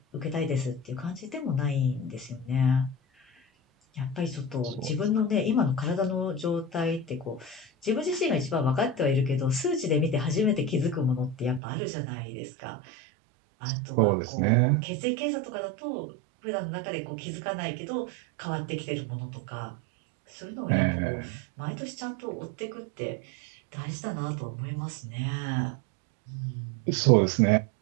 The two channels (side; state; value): left; drops out; at 11.6 s